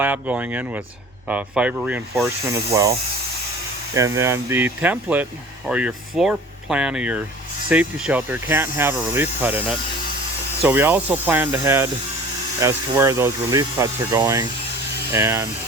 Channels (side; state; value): both; normal; correlation 0.43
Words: going in with fiber reinforcement as well. And then the template or your floor plan of your safety shelter can't have a relief cut in it. So we also planned ahead as to where those relief cuts are going. And